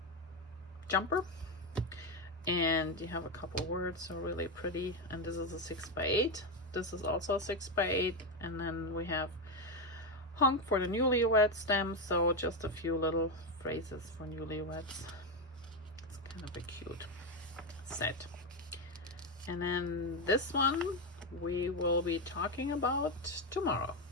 Jumper. And you have a couple words, so really pretty. And this is a 6x8. This is also a 6x8. And then we have Hunk for the newlywed stamp, so just a few little phrases for newlyweds. It's kind of a cute set. And then this one we will be talking about tomorrow.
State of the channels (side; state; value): both; normal; correlation 0.09